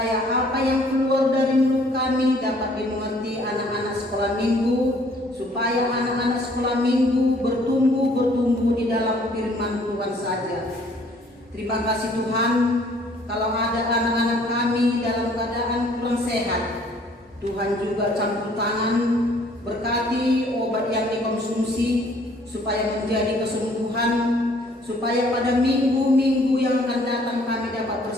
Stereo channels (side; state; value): both; normal; correlation 0.59